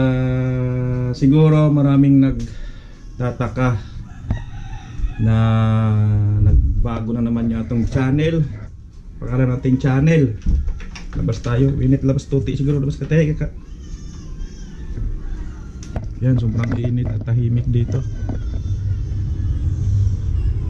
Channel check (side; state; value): both; identical; correlation 1.00